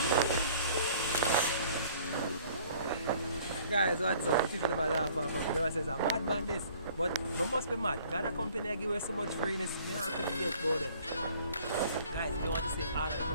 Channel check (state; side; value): inverted; both; correlation -0.54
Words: Guys, what's up? The people never laugh at me. They always say, I'm mad man this. But we must be mad. Got a company that give us so much freeness. Me have to get about it. Guys, if you want to see all of the